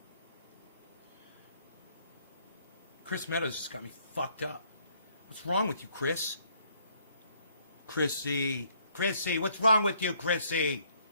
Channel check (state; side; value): inverted; both; correlation -0.66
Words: Chris Meadows just got me fucked up. What's wrong with you, Chris? Chrissy. Chrissy, what's wrong with you, Chrissy?